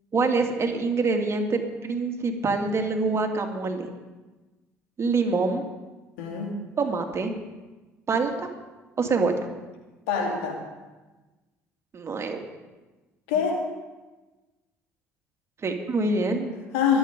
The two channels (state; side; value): normal; both; correlation 0.51